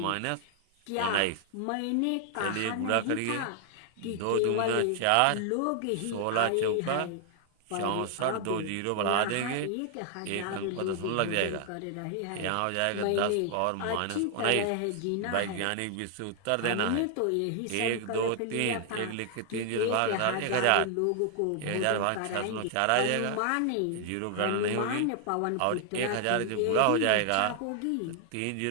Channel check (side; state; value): both; different; correlation 0.00